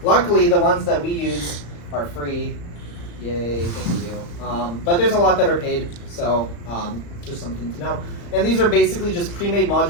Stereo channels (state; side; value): late; right; 35 ms